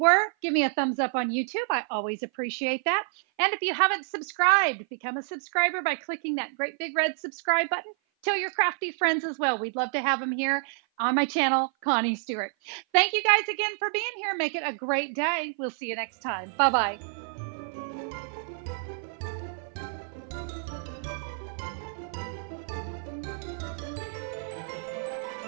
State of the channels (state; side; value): silent; left; 55 dB below the other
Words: give me a thumbs up on YouTube. I always appreciate that. And if you haven't subscribed, become a subscriber by clicking that great big red subscribe button. Tell your crafty friends as well. We'd love to have them here on my channel, Connie Stewart. Thank you guys again for being here. Make it a great day. We'll see you next time. Bye-bye.